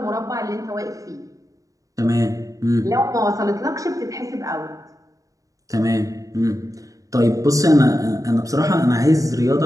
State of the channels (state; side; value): late; left; 0.16 ms